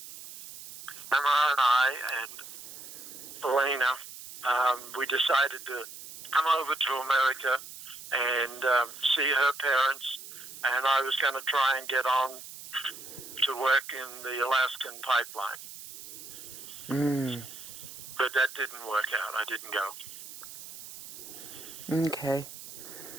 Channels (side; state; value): right; noise; hiss, 13 dB below the sound